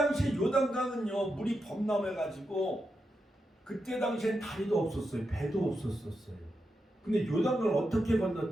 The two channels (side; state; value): both; normal; correlation 0.86